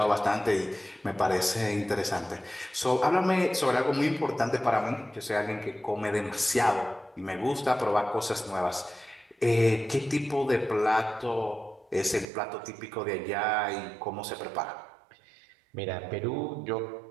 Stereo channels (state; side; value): drops out; left; at 12.2 s